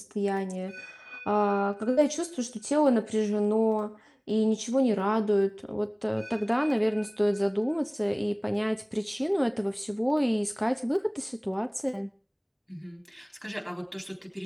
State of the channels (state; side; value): identical; both; correlation 1.00